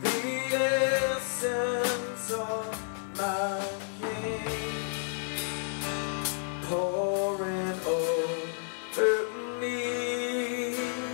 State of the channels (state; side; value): silent; right; digital silence